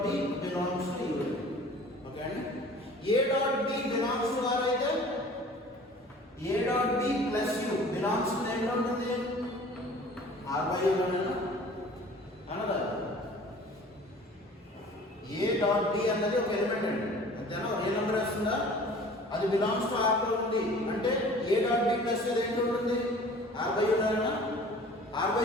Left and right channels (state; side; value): normal; both; correlation 0.46